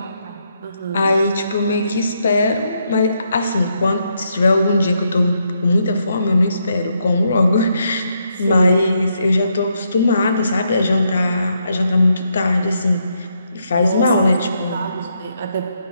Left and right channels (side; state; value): both; inverted; correlation -0.78